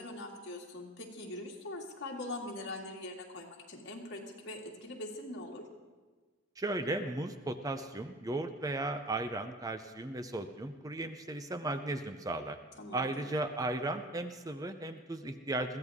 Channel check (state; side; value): normal; both; correlation 0.41